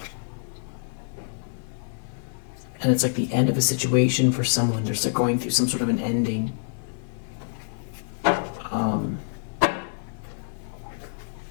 And it's like the end of a situation for someone. They're going through some sort of an ending.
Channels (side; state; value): right; silent; digital silence